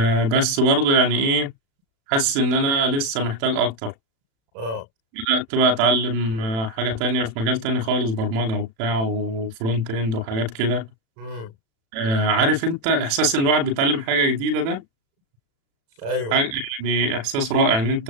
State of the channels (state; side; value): late; left; 36 ms